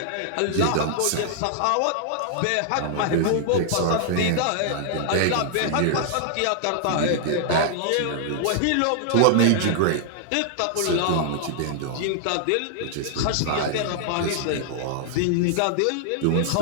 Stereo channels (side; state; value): both; different; correlation -0.01